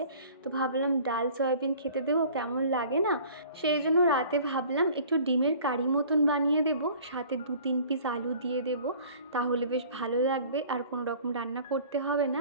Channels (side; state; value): both; inverted; correlation -0.48